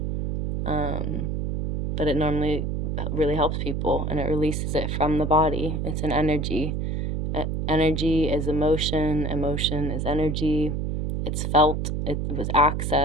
but it normally really helps people and it releases it from the body. It's an energy. Energy is emotion. Emotion is energy. It's felt. It was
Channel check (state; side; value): noise; right; hum, 1 dB below the sound